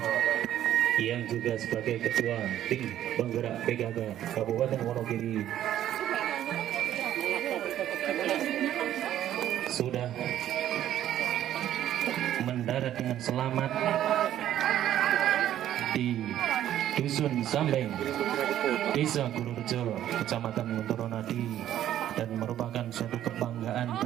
yang juga sebagai Ketua Tim Penggerak PKK Kabupaten Wonogiri sudah mendarat dengan selamat di Dusun Sambeng, Desa Kurujo, Kecamatan Montoronadi, dan merupakan suatu kebanggaan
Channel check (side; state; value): left; quieter; 11.8 dB